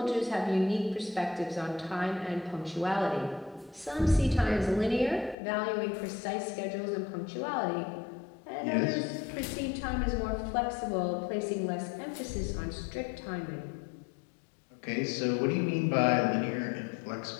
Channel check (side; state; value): right; drops out; at 5.4 s